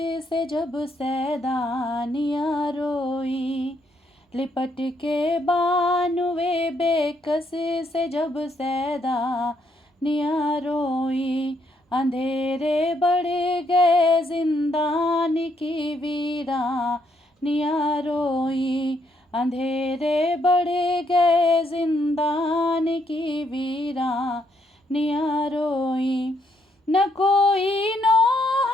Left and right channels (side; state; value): both; normal; correlation 0.74